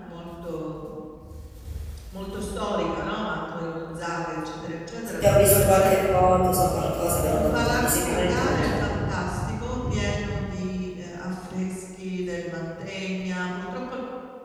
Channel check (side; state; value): both; identical; correlation 1.00